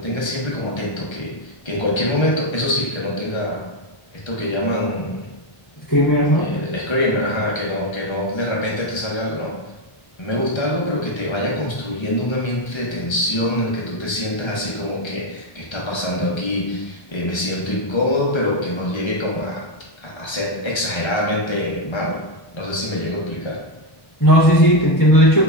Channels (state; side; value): late; right; 1.3 ms